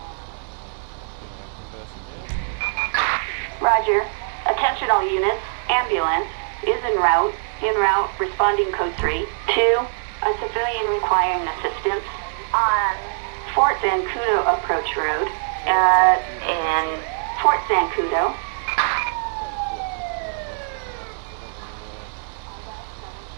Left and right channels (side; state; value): left; silent; 55 dB below the other